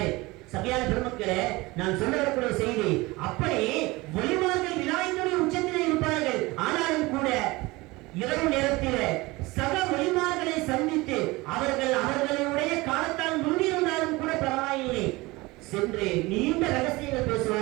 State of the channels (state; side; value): quieter; left; 22.0 dB